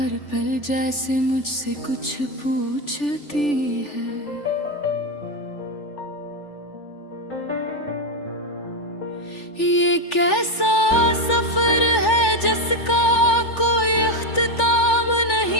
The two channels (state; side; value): late; right; 3.4 ms